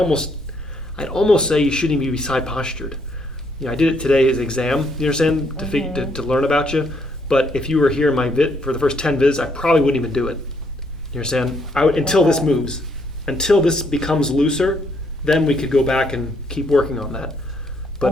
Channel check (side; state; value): right; noise; hum, 26 dB below the sound